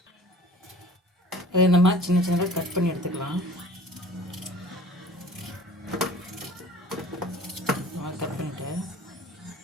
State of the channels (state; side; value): normal; both; correlation 0.47